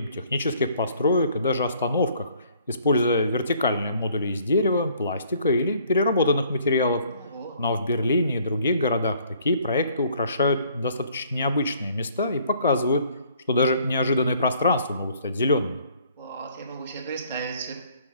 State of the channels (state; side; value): inverted; both; correlation -0.60